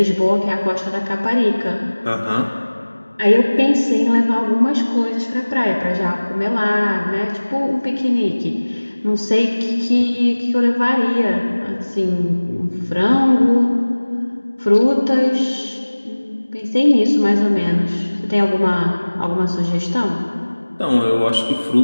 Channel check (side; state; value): both; inverted; correlation -1.00